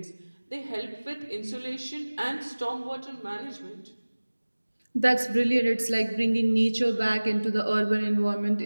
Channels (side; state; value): both; inverted; correlation -1.00